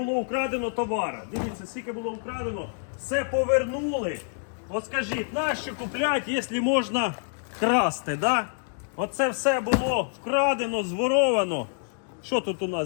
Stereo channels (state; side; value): silent; right; 60 dB below the other